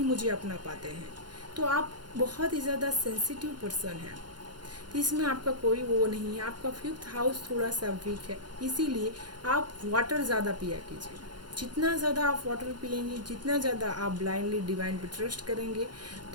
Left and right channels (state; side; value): late; left; 0.71 ms